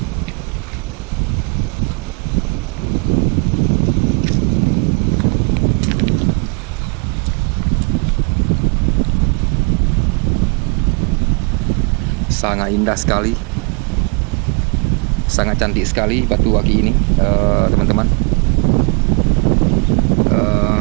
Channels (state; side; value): quieter; left; 35.5 dB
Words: Sangat indah sekali, sangat cantik sekali batu aki ini, teman-teman.